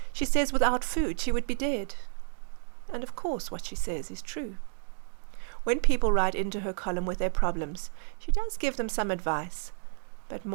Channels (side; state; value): left; silent; digital silence